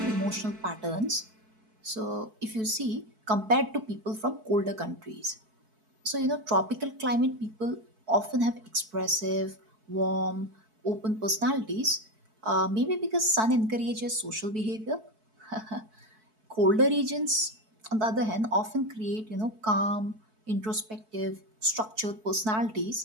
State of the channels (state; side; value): late; left; 4.6 ms